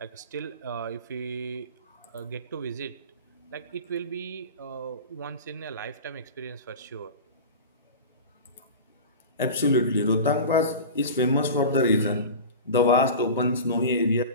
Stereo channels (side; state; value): both; inverted; correlation -0.31